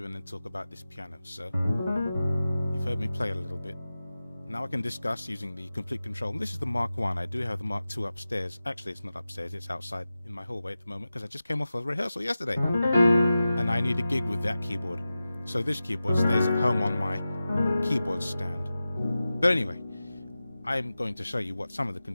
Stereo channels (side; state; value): both; inverted; correlation -0.94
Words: and then talk about this piano. So you've heard me play a little bit. Now I can discuss using the complete control. And this is the Mark 1. I do have the Mark 2 upstairs. Actually, it's not upstairs. It's outside in my hallway at the moment because I just came off a rehearsal yesterday. And I need a gig with that keyboard. So this keyboard stays at home on my keyboard stand. But anyway, I'm going to show you what some of the